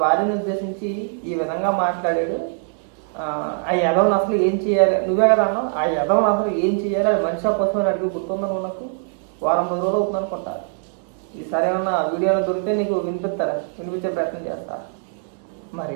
భార్యను ఉద్దేశించి ఈ విధంగా మాట్లాడాడు, ఆ యదవని అసలు ఏం చేయాలి, నువ్వే కదా అన్నావు, ఆ యదవని అసలు ఏం చేయాలి, అది మనిషి కోసం అడిగి గుర్తుందా నువ్వు? నాకు వారం రోజులు అవుతుంది అనుకుంటా. ఈసారి ఏమన్నా వీడియోలో దొరికితే నీకు వినిపించే ప్రయత్నం చేస్తా. మరి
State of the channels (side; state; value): left; silent; 64 dB below the other